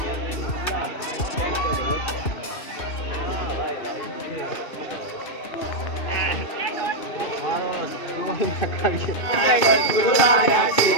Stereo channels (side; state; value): right; late; 2.6 ms